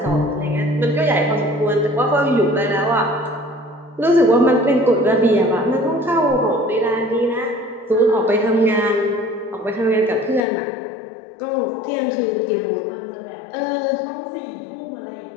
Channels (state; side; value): drops out; right; at 10.4 s